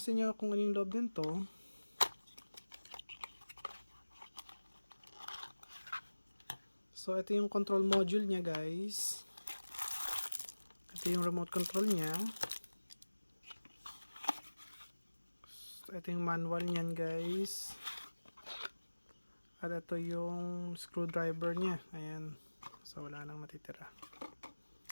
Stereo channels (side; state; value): both; inverted; correlation -1.00